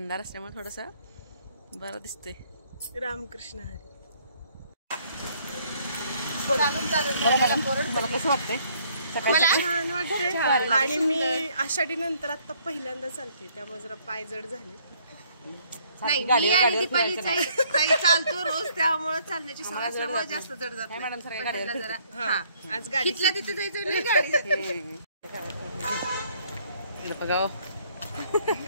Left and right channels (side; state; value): both; inverted; correlation -0.64